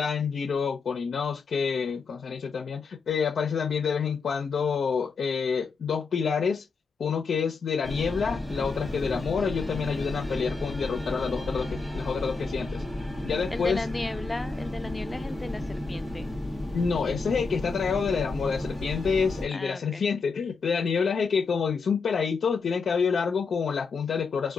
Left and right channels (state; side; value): quieter; right; 4.8 dB